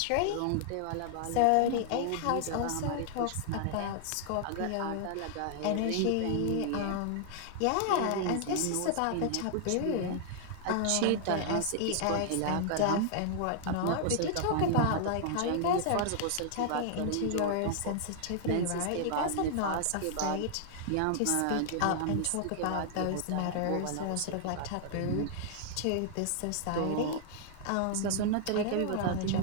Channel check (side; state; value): both; different; correlation -0.01